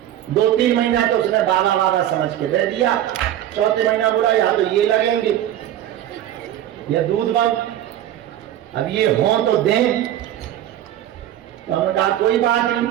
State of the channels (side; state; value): left; quieter; 12.1 dB